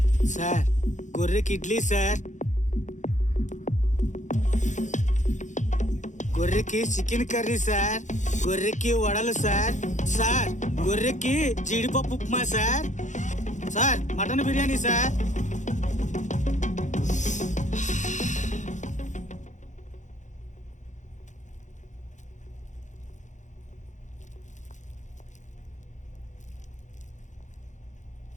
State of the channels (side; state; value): right; late; 0.35 ms